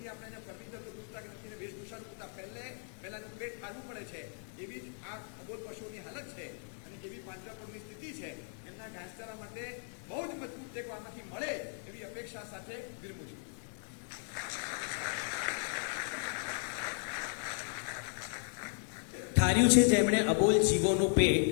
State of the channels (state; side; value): silent; right; 54 dB below the other